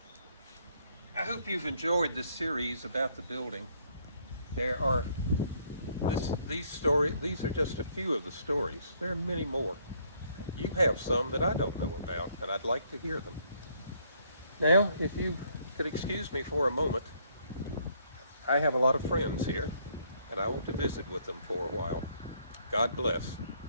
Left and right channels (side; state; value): both; inverted; correlation -0.67